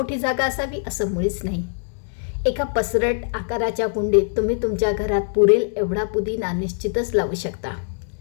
जागा असावी असं मुळीच नाही. एका पसरट आकाराच्या कुंडीत तुम्ही तुमच्या घरात पुरेल एवढा पुदिना निश्चितच लावू शकता.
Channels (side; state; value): right; silent; digital silence